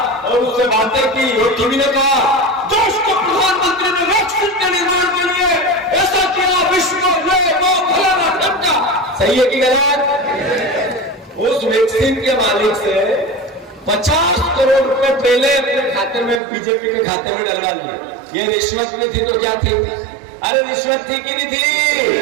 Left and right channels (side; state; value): left; drops out; at 16.4 s